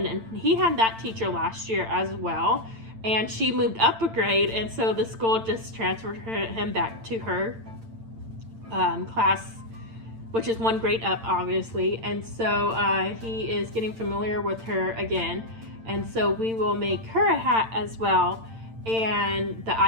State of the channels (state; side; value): late; left; 8.9 ms